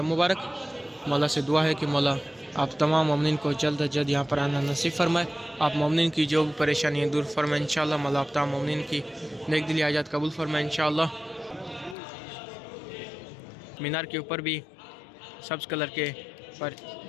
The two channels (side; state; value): right; drops out; at 12.0 s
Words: मुबारक। मौला से दुआ है कि मौला आप तमाम मोमिनीन को जल्द अज जल्द यहाँ पर आना नसीब फरमाए। आप मोमिनीन की जो भी परेशानियाँ दूर फरमाए इंशाअल्लाह। मौला आप तमाम मोमिनीन की नेक दिली हाजात कबूल फरमाए इंशाअल्लाह। मीनार के ऊपर भी सब्ज़ कलर के पर